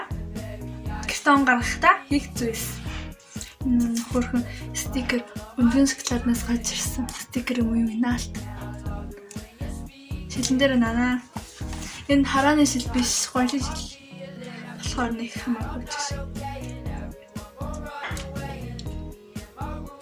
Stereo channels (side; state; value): both; identical; correlation 1.00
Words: Гэртээ он гаргахтаа хийх зүйлс. Хөрхөн стикер өндгөн шоколаднаас гарч ирсэн. Стикер юм наалт. Шилэн дээр нанаа. Энэ харааны шил биш, гоёлын шил. Болохоор нэг хамаагүй ч.